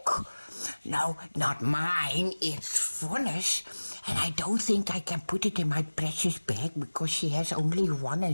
No, not mine, it's Vonne's. And I don't think I can put it in my precious bag, because she has only one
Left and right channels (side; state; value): both; inverted; correlation -1.00